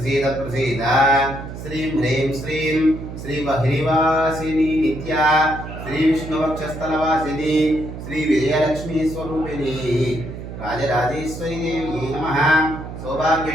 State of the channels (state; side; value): noise; right; hum, 10 dB below the sound